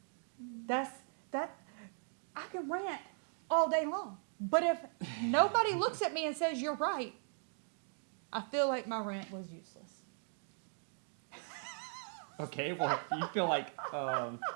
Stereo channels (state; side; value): silent; left; 52 dB below the other